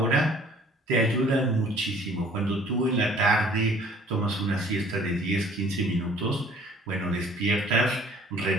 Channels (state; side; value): normal; both; correlation 0.53